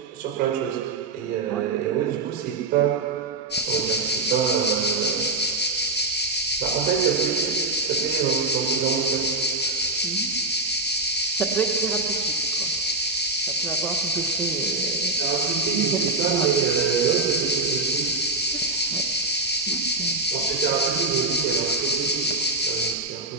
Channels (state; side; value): quieter; left; 3.3 dB